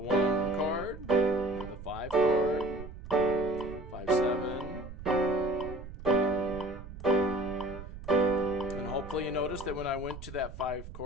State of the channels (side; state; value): right; noise; rumble, 12 dB below the sound